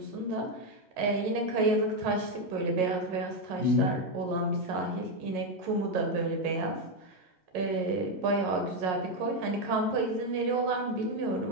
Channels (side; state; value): left; late; 11 ms